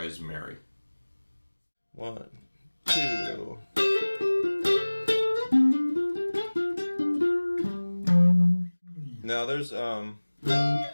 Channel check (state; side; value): inverted; both; correlation -1.00